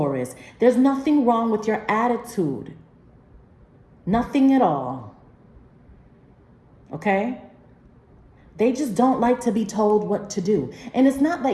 There's nothing wrong with your attitude. Nothing at all. Okay? They just don't like to be told what to do. And it's not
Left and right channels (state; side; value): identical; both; correlation 1.00